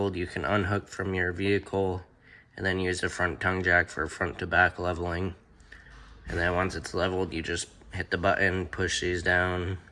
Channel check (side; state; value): both; identical; correlation 1.00